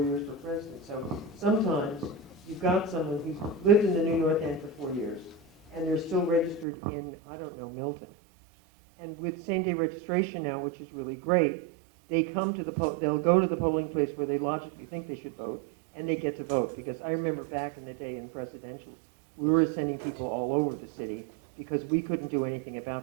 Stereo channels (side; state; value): left; drops out; at 6.7 s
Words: years for president. So sometimes you've got someone who's lived in the New North End for 4 years, and they're still registered in, I don't know, Milton. And with same-day registration now, which is really great, they come to they'll go to the polling place where they logically think they should vote, and they get to vote. Because I remember back in the day in presidential, we were sending people all over the city because we couldn't do anything